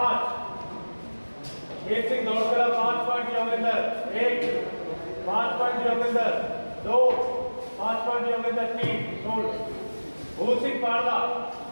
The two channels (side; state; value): both; inverted; correlation -1.00